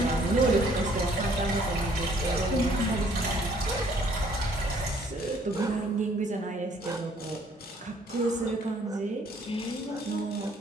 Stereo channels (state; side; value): normal; both; correlation 0.61